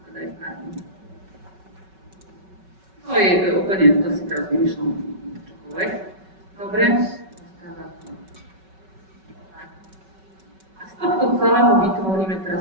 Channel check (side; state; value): left; late; 5.3 ms